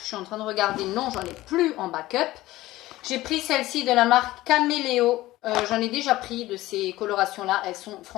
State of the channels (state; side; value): quieter; right; 17.0 dB